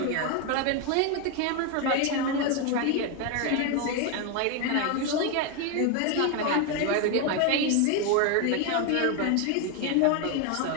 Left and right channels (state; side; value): different; both; correlation 0.01